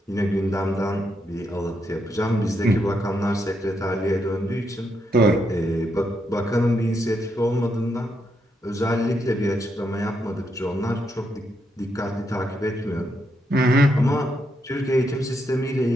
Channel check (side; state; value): both; normal; correlation 0.80